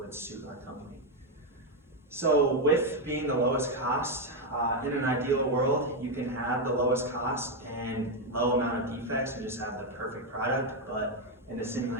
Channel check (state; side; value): normal; both; correlation 0.04